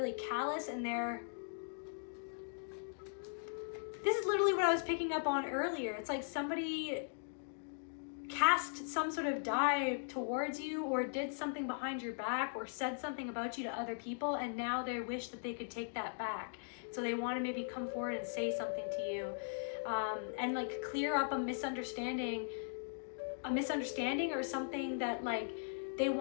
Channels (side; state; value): right; silent; digital silence